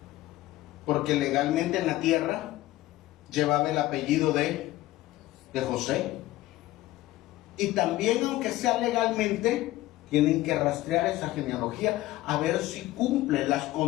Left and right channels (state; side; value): quieter; right; 16.7 dB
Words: Porque legalmente en la tierra llevaba el apellido de José. Y también, aunque sea legalmente, tienen que rastrear esa genealogía a ver si cumple las